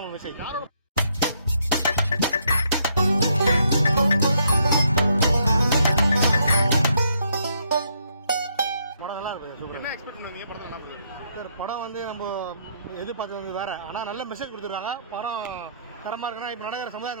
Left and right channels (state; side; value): inverted; both; correlation -0.73